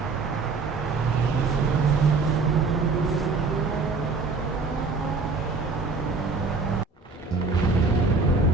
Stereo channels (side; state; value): left; quieter; 4.3 dB